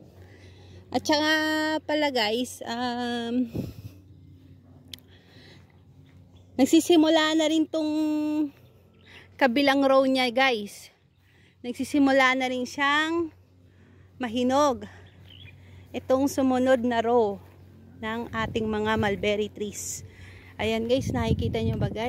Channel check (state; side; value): identical; both; correlation 1.00